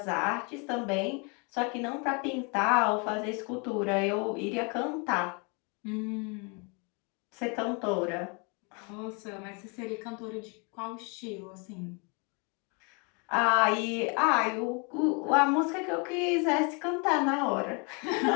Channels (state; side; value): quieter; right; 33.3 dB